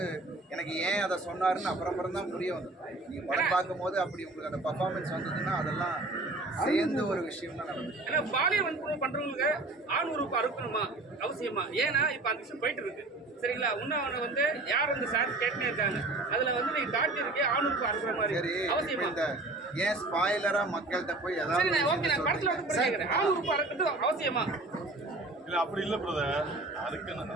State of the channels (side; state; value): left; quieter; 3.1 dB